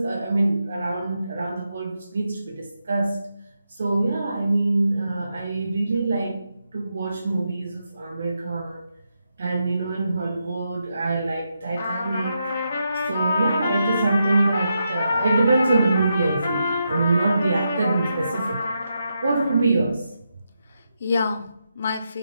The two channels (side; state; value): both; inverted; correlation -0.84